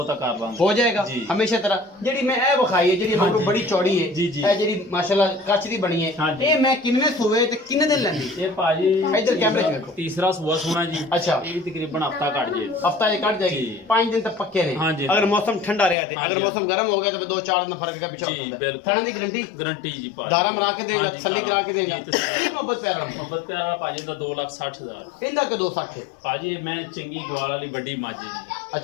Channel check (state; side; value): drops out; right; at 16.0 s